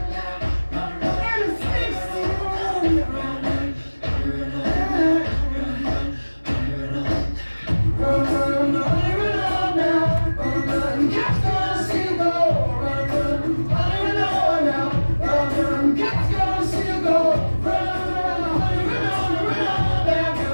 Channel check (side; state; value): both; inverted; correlation -1.00